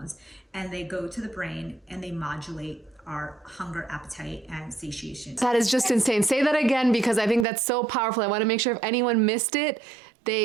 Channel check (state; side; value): drops out; left; at 7.5 s